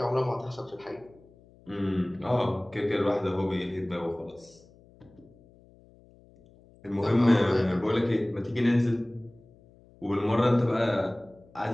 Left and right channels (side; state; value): left; noise; hum, 27 dB below the sound